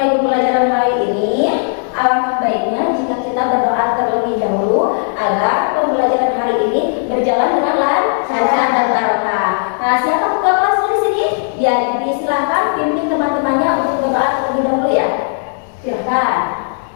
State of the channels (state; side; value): silent; right; digital silence